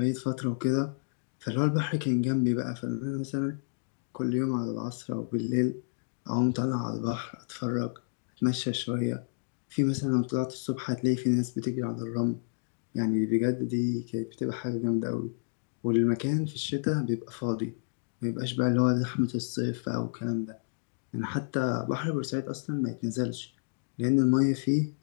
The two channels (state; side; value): silent; right; digital silence